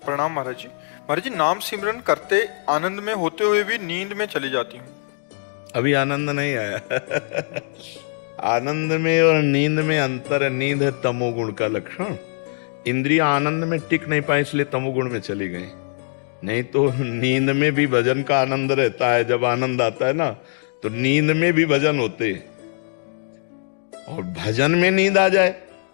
प्रणाम महाराज जी। महाराज जी, नाम सिमरन करते आनंद में होते हुए भी नींद में चली जाती हूँ। अभी आनंद नहीं आया। आनंद में और नींद में अंतर है। नींद है तमोगुण का लक्षण। इंद्रियां आनंद में टिक नहीं पाई इसलिए तमोगुण में चली गई। नहीं तो नींद में भी भजन का आनंद रहता है। जब आनंद आता है ना तो नींद में भी भजन होते हैं। और भजन में नींद आ जाए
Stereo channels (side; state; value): right; silent; digital silence